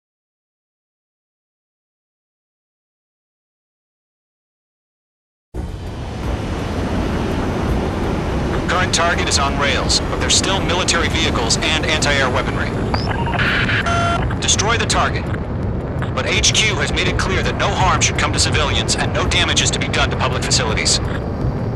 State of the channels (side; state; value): both; identical; correlation 1.00